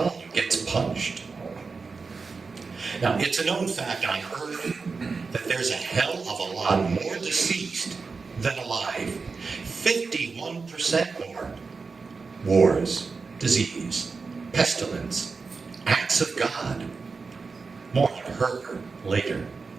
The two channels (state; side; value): quieter; left; 4.6 dB